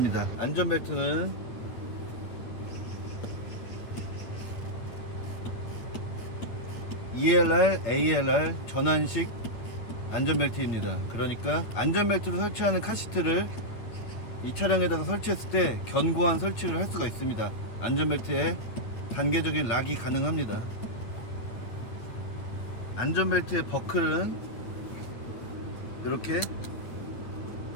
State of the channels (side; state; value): right; late; 8.8 ms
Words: 안전벨트는 ELR, ALR 전환식 안전벨트입니다. 그러니까 안전벨트로 설치하는 카시트를 이 차량에다가 설치했을 때 견고한 설치를 할 수가 있습니다. 안전벨트에 단계적인 락이 가능합니다. 안전벨트의 버클은 이렇게